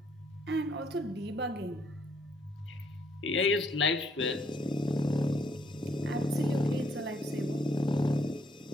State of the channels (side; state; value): both; normal; correlation 0.69